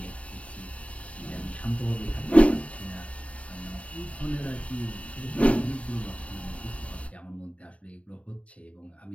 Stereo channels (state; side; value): late; right; 0.065 ms